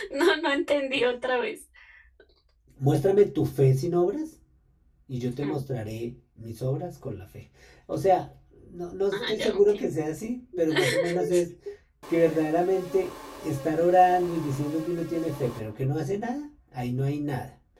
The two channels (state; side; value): identical; both; correlation 1.00